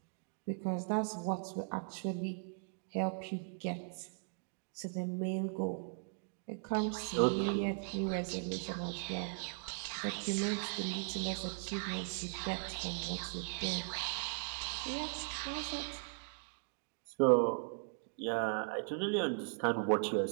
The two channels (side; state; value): left; silent; 52 dB below the other